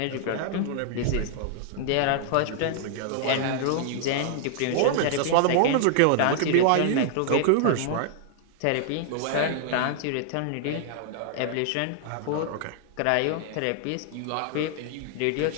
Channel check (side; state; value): both; different; correlation 0.00